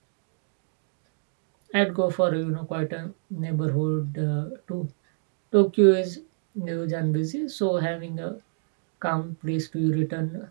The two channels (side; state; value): left; silent; digital silence